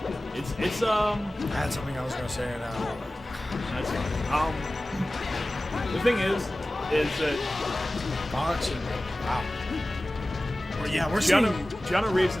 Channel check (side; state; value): both; normal; correlation 0.97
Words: It's I had something I was gonna say now. that's fine. The thing is that Fox and wow. Well, yeah, we're Gianna seeing. Reeves